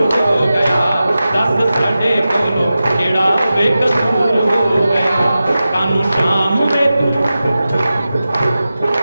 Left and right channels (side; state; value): both; inverted; correlation -0.93